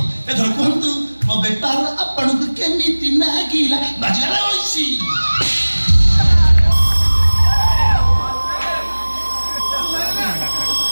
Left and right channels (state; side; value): inverted; both; correlation -1.00